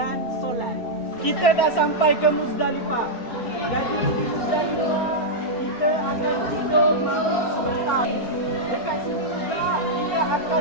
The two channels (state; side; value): late; right; 4.5 ms